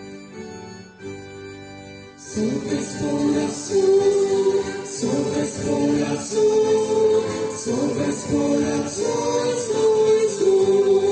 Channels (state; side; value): identical; both; correlation 1.00